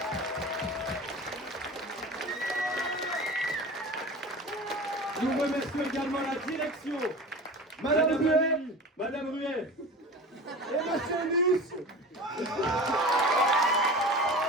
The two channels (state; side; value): normal; both; correlation 0.35